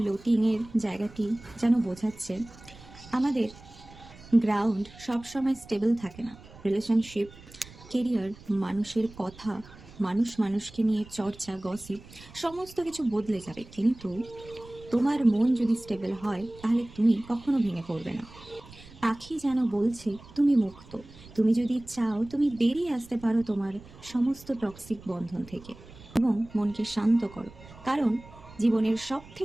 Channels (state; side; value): noise; right; rumble, 20 dB below the sound